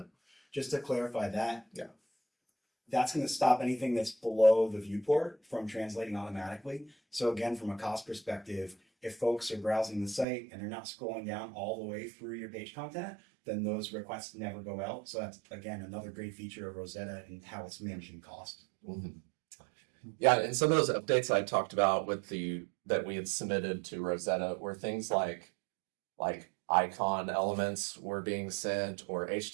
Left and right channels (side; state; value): left; drops out; at 10.2 s